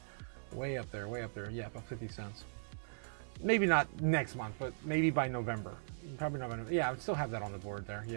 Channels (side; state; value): left; silent; 52 dB below the other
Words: Way up there. Yeah, about 50 cents. Maybe not next month, but maybe by November. Probably November. Yeah, I would still have that on the board there.